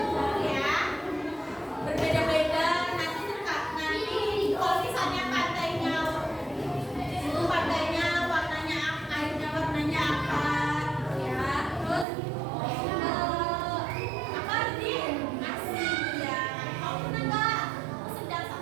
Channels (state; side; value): drops out; left; at 12.1 s